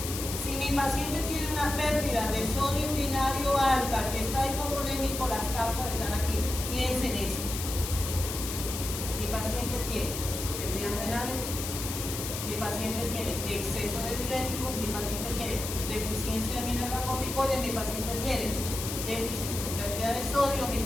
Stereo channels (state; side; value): noise; left; hiss, 6 dB below the sound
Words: Si mi paciente tiene una pérdida de sodio urinario alta, que está hipovolémico, las causas están aquí. Piensen esto. Mi paciente tiene pérdidas renales, mi paciente tiene exceso de diurético, mi paciente tiene deficiencia de mineralocorticoides, mi paciente tiene déficit de cantidad de sodio, mi